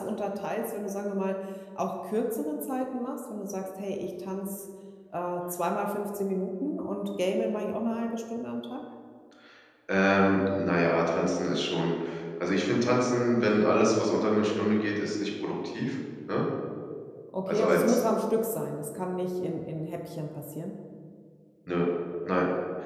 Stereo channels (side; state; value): both; identical; correlation 1.00